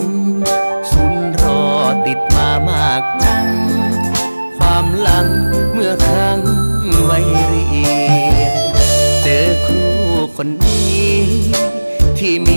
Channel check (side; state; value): both; inverted; correlation -1.00